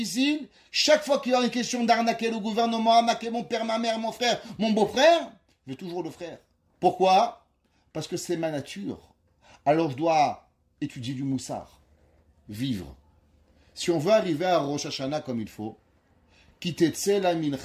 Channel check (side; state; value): both; identical; correlation 1.00